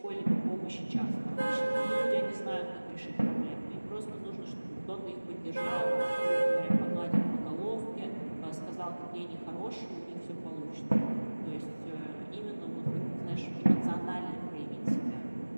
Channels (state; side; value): inverted; both; correlation -1.00